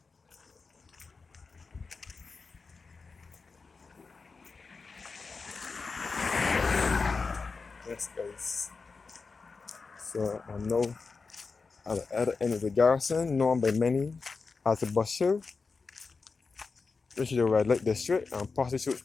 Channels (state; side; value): quieter; right; 4.5 dB